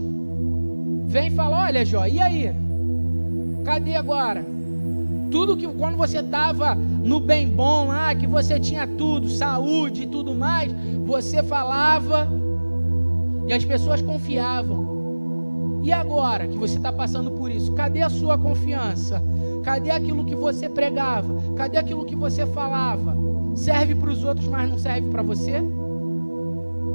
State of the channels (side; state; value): both; inverted; correlation -1.00